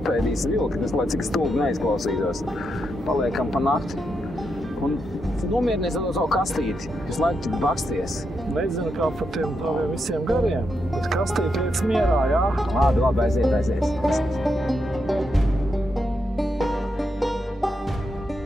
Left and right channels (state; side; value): normal; both; correlation 0.83